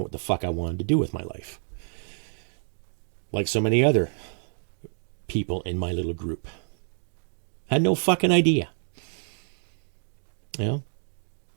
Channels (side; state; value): left; silent; 59 dB below the other